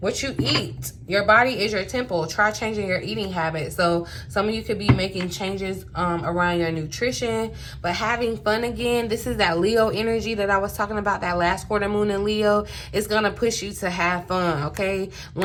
you eat. Your body is your temple. Try changing your eating habits. So some of you could be making changes around your nutrition, but having fun again. This is that Leo energy that I was talking about, that last quarter moon in Leo. It's gonna push you to have fun, okay?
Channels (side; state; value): both; identical; correlation 1.00